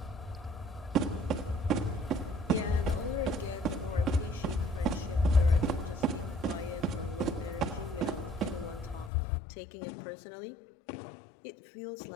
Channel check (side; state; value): right; drops out; at 9.1 s